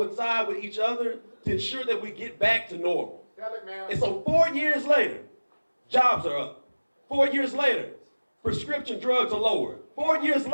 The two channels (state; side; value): inverted; both; correlation -1.00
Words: with each other to ensure that we get back to normal. And so 4 years later, jobs are up. 4 years later, prescription drugs are lower. 4 years